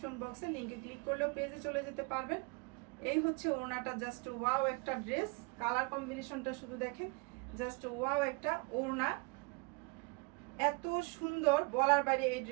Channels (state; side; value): quieter; left; 30.0 dB